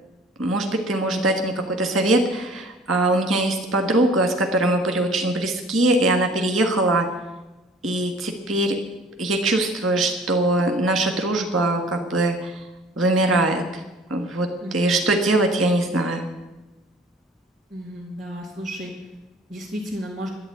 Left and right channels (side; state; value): both; normal; correlation 0.50